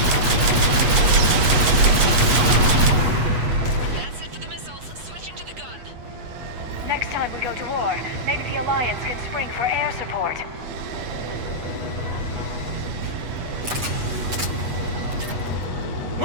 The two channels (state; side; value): late; left; 8.2 ms